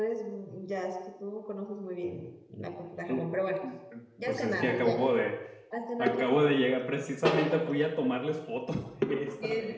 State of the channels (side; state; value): both; identical; correlation 1.00